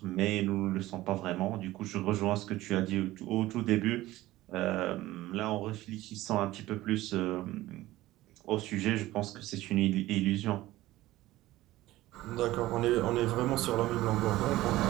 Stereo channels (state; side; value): quieter; left; 16.7 dB